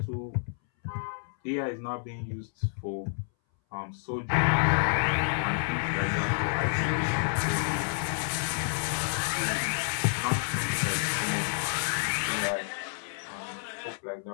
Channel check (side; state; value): right; silent; 58 dB below the other